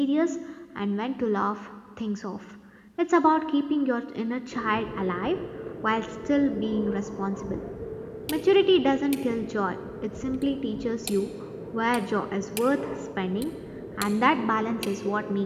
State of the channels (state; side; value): identical; both; correlation 1.00